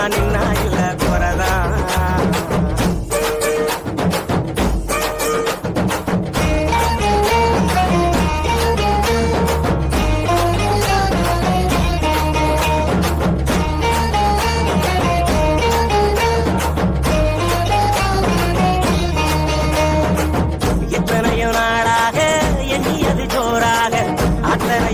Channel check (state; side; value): identical; both; correlation 1.00